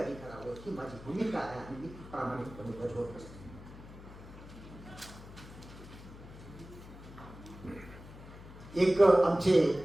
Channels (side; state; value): left; noise; hum, 16 dB below the sound